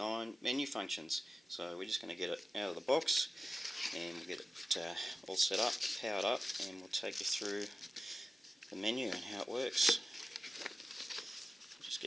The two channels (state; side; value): normal; both; correlation 0.95